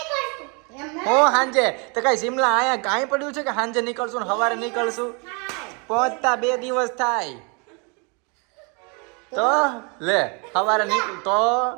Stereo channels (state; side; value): quieter; left; 33.3 dB